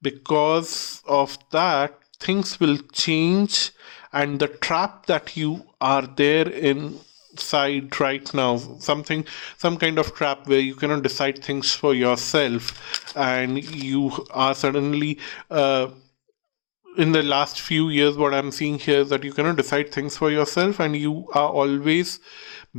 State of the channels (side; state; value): right; silent; digital silence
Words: Because of that, things will change, and the trap that you are there inside right now, some kind of trap where you cannot decide things for yourself, and you are suddenly in the last few years, what I'm seeing here is that you cannot decide things for yourself, and you are always